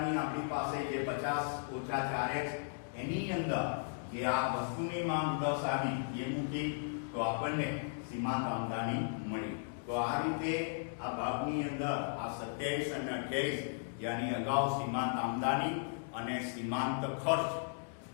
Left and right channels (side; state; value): right; silent; digital silence